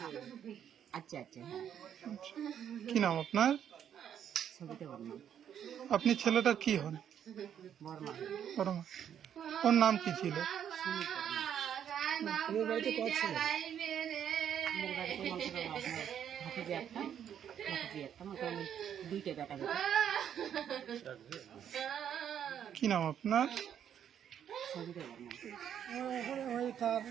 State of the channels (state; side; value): quieter; left; 9.2 dB